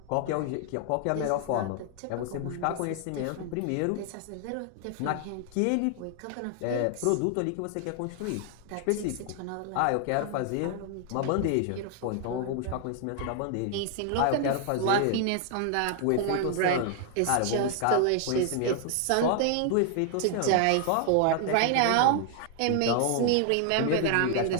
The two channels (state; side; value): different; both; correlation 0.00